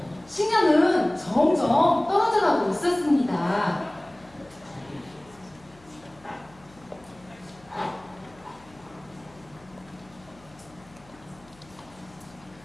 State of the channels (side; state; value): left; noise; hum, 26 dB below the sound